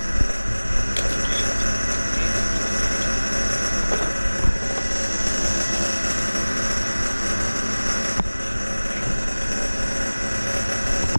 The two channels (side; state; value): both; inverted; correlation -1.00